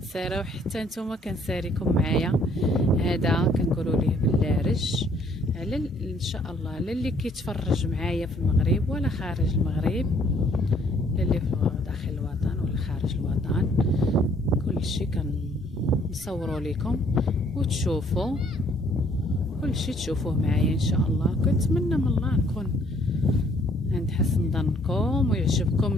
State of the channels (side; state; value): both; normal; correlation 0.63